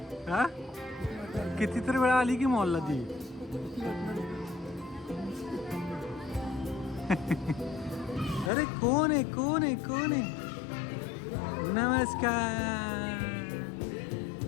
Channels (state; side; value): drops out; right; at 8.5 s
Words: हा कितीतरी वेळा आली की मॉलला ती. अरे कोण आहे कोण आहे कोण आहे. नमस्कार.